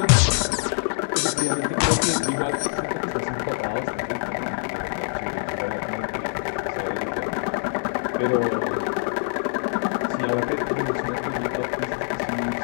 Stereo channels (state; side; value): silent; right; digital silence